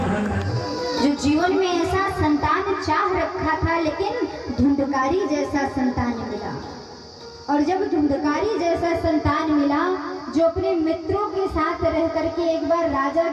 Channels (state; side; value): identical; both; correlation 1.00